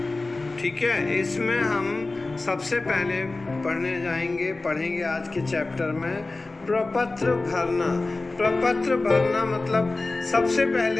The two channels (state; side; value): quieter; right; 3.3 dB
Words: ठीक है, इसमें हम सबसे पहले पढ़ेंगे आज के चैप्टर में प्रपत्र भरना। प्रपत्र भरना मतलब सबसे